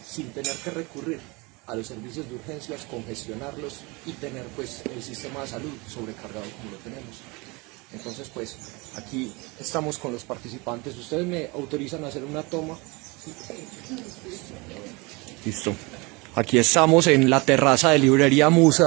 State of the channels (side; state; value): left; quieter; 26.4 dB